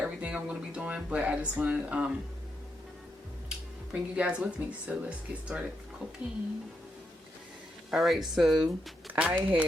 I'm going to be doing, but I just want to bring you guys with me. So let's get started cooking. Alright, so I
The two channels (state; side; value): normal; both; correlation 0.82